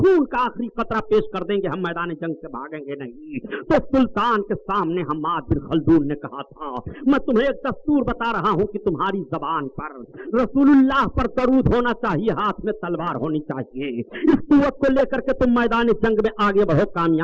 का आखिरी कतरा पेश कर देंगे, हम मैदान जंग से भागेंगे नहीं। तो सुल्तान के सामने हम्माद बिन खल्दून ने कहा था, मैं तुम्हें एक दस्तूर बता रहा हूं कि तुम्हारी जबान पर रसूलुल्लाह पर दरूद होना चाहिए, हाथ में तलवार होनी चाहिए। इस कुव्वत को लेकर के तुम मैदान जंग में आगे बढ़ो,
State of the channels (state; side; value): identical; both; correlation 1.00